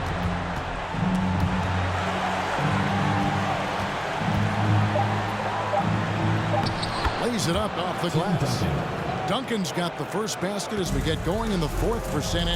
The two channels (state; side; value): identical; both; correlation 1.00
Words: Lays it up off the glass. Duncan's got the first basket as we get going in the fourth for San